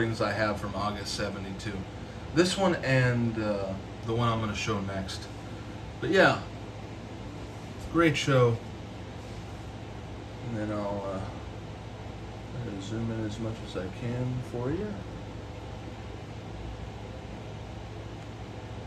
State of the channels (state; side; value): identical; both; correlation 1.00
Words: I have from August 72. This one and the one I'm going to show next. But yeah, great show. And then I'll zoom in as much as I can for you.